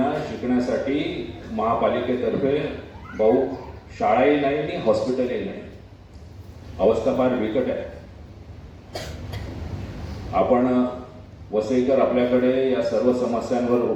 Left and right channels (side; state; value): both; identical; correlation 1.00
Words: शिकण्यासाठी महापालिकेतर्फे भाऊ शाळाही नाही आणि हॉस्पिटलही नाही. अवस्था फार बिकट आहे. आपण वसईकर आपल्याकडे या सर्व समस्यांवर